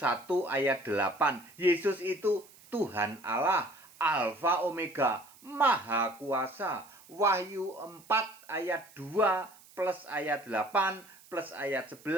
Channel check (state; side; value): noise; right; hiss, 24 dB below the sound